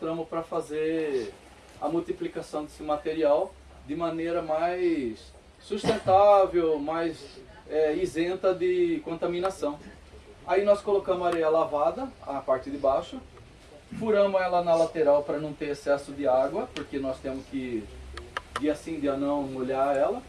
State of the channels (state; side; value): identical; both; correlation 1.00